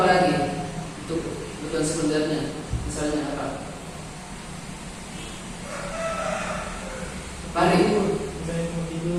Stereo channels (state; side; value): identical; both; correlation 1.00